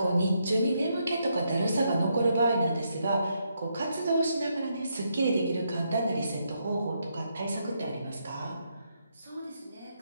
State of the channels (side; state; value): both; inverted; correlation -0.79